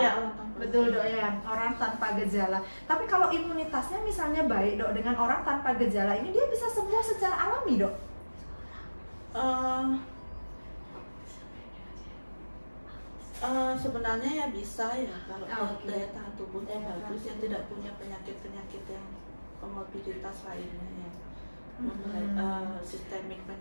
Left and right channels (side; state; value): both; inverted; correlation -1.00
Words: Betul dok ya, orang tanpa gejala. Tapi kalau imunitasnya misalnya baik dok, dengan orang tanpa gejala ini dia bisa sembuh secara alami dok? Sebenarnya ya bisa ya kalau daya tahan tubuhnya bagus, yang tidak punya penyakit-penyakit yang komorbiditas lainnya ya, penyakit